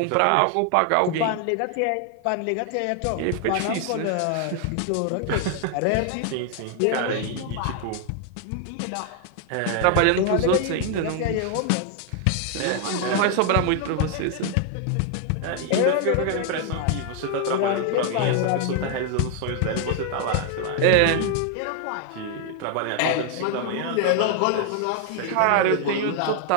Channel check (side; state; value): both; different; correlation 0.00